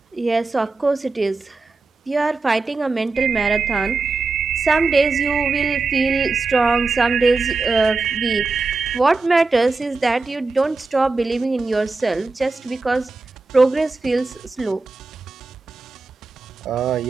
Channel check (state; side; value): quieter; left; 3.8 dB